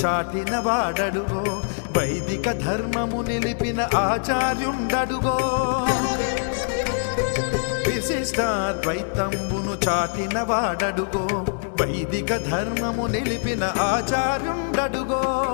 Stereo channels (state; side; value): silent; right; 62 dB below the other